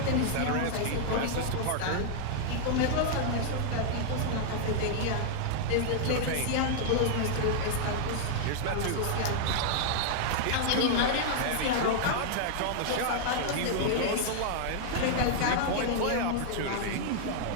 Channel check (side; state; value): both; different; correlation -0.01